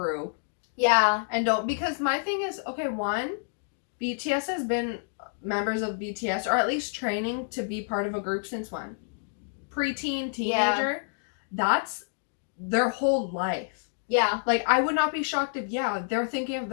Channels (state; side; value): silent; right; digital silence